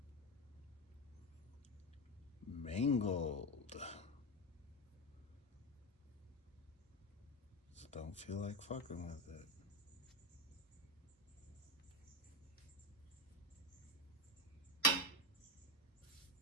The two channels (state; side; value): normal; both; correlation 0.12